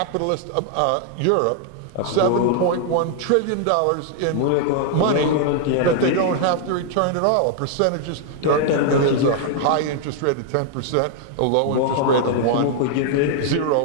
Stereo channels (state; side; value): different; both; correlation 0.00